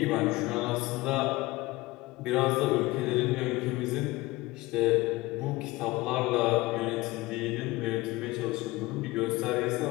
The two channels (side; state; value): right; quieter; 20.5 dB